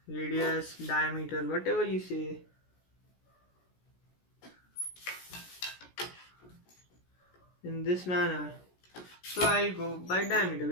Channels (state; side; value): late; right; 16 ms